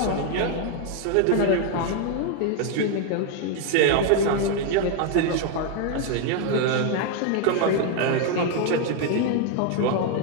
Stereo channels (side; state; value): both; different; correlation 0.01